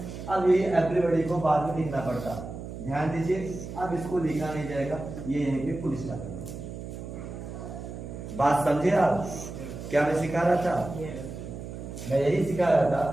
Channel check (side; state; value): right; noise; hum, 10 dB below the sound